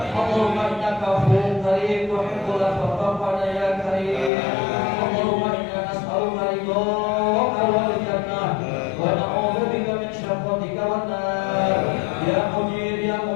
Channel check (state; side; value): drops out; right; at 4.3 s